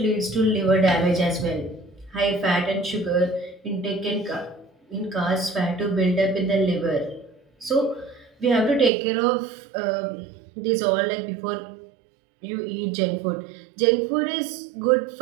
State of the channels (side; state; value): left; drops out; at 8.9 s